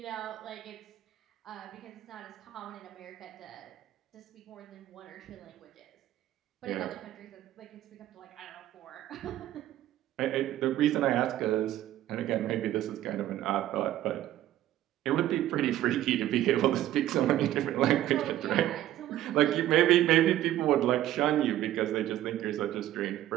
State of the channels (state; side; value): quieter; left; 13.4 dB